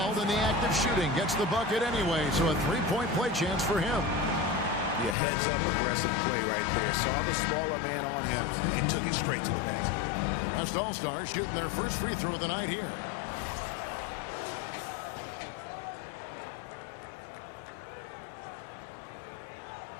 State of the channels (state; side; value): drops out; right; at 5.2 s